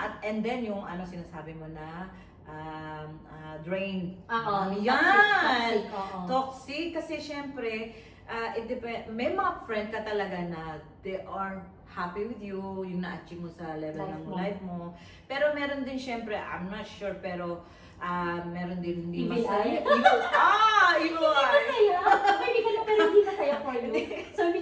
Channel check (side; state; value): both; identical; correlation 1.00